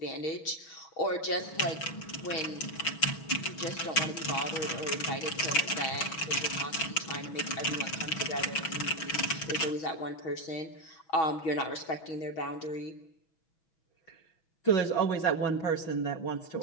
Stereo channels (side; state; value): right; late; 6.1 ms